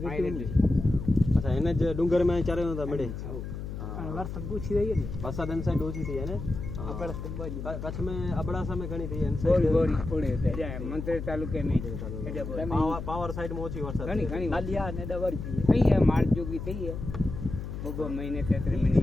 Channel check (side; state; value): left; noise; hum, 7 dB below the sound